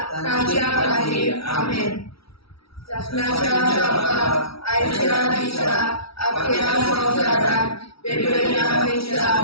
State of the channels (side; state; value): right; late; 0.76 ms